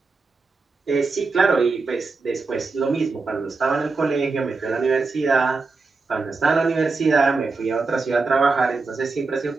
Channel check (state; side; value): quieter; left; 4.1 dB